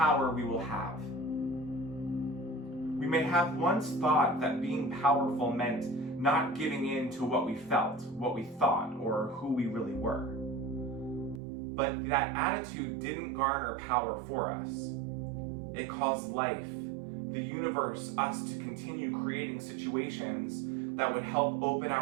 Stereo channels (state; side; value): drops out; left; at 11.4 s